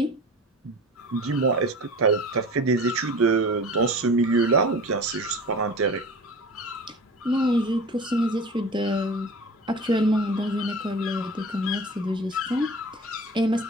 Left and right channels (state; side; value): normal; both; correlation 0.37